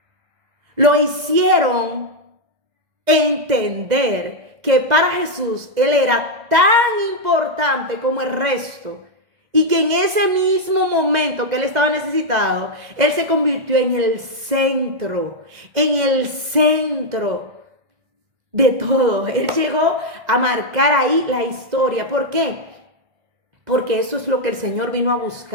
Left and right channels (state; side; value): late; left; 2.1 ms